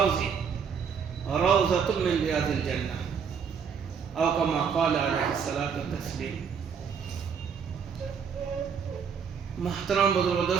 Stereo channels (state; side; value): quieter; left; 6.7 dB